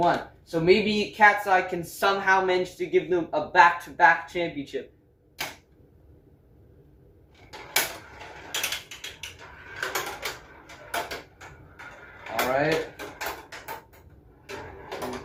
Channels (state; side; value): identical; both; correlation 1.00